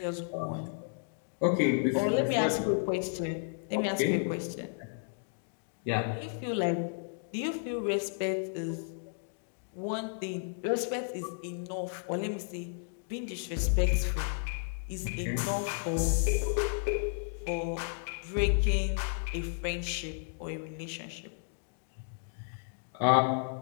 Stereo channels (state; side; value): silent; right; digital silence